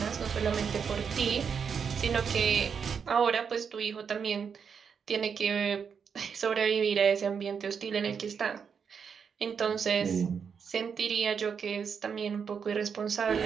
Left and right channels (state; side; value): quieter; left; 6.6 dB